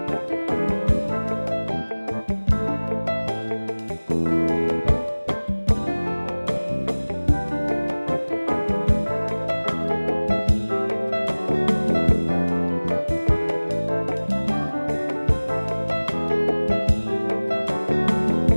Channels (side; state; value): both; inverted; correlation -1.00